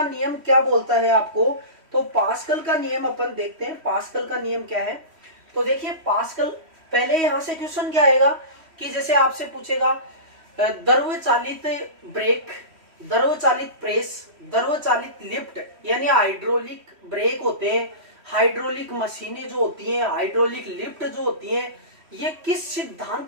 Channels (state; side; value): late; left; 3.1 ms